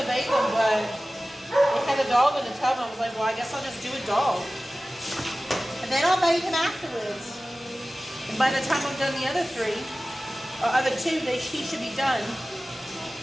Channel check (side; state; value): both; normal; correlation 0.97